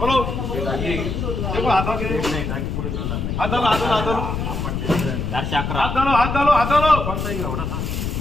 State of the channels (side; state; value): left; noise; rumble, 3 dB below the sound